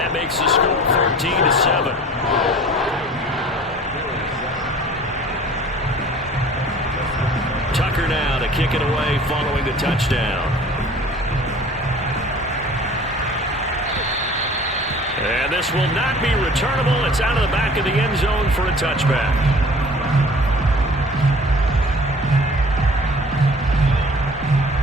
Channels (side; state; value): both; normal; correlation 0.47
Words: makes the score 14-7. Tucker now to kick it away following the touchdown. And this will not be returnable. It's out of the back of the end zone for a touchback.